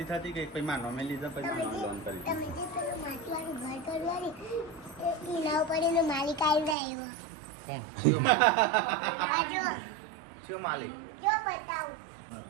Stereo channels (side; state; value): left; drops out; at 6.8 s